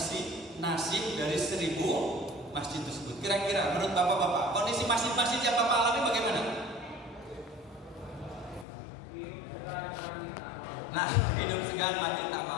nasib dari 1000 masjid tersebut. Kira-kira menurut bapak-bapak, kondisi masjid-masjid yang bapak alami bagaimana? Nah, hidup segan mati tak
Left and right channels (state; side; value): drops out; right; at 8.7 s